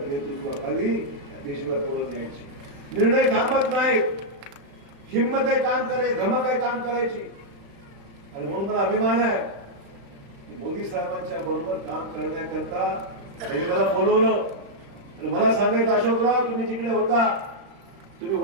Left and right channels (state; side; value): late; left; 35 ms